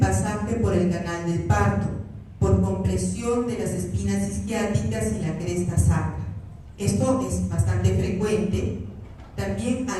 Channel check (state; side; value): identical; both; correlation 1.00